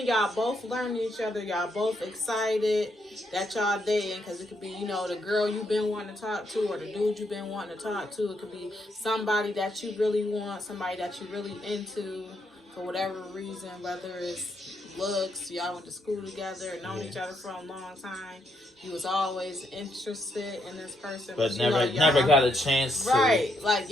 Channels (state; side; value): normal; both; correlation 0.77